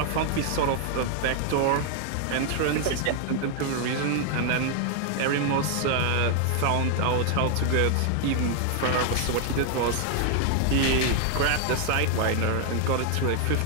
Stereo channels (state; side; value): different; both; correlation 0.00